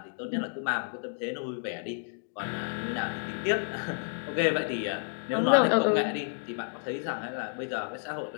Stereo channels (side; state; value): right; silent; 57 dB below the other